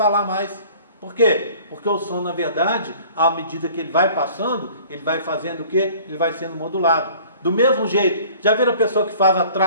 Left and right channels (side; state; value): both; inverted; correlation -0.50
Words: mais. Por quê? Porque o som, na verdade, à medida que ele vai passando, ele vai fazendo o quê? Ele vai sendo modulado. Do mesmo jeito, já viram a pessoa que faz uma